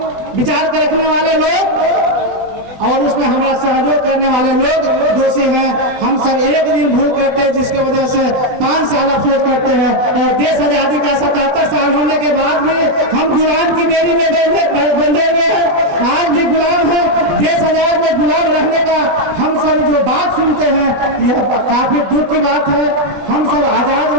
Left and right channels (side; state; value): left; late; 20 ms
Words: विचार कर रखने वाले लोग और उसमें हमारा सहयोग करने वाले लोग दोषी हैं। हम सब एक दिन भूल करते हैं, जिसकी वजह से 5 साल अफसोस करते हैं। और देश आजादी का 77 साल होने के बाद भी हम गुलाम की बेड़ी में बंधे हुए हैं। आज भी गुलाम है। देश आजाद में गुलाम रहने का हम सब जो बात सुनते हैं, यह काफी दुख की बात है। हम सब आजाद